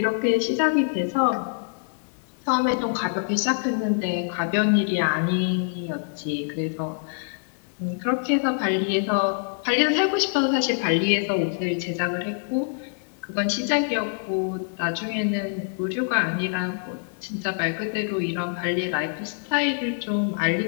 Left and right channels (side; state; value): right; silent; 61 dB below the other